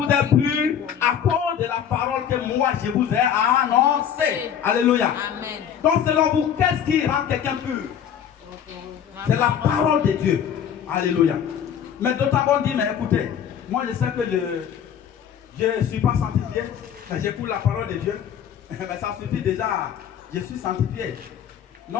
êtes purs à cause de la parole que moi je vous ai annoncée. Alléluia. Amen. Donc selon vous, qu'est-ce qui rend quelqu'un pur? C'est la parole de Dieu. Alléluia. Mais d'autant qu'on dit, mais écoutez, moi je sais que je ne suis pas sanctifié, mais j'écoute la parole de Dieu. Mais ça suffit déjà, je suis sanctifié.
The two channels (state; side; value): quieter; right; 8.8 dB